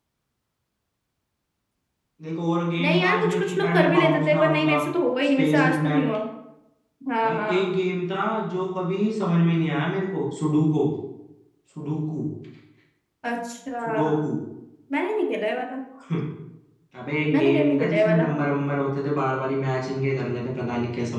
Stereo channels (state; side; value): identical; both; correlation 1.00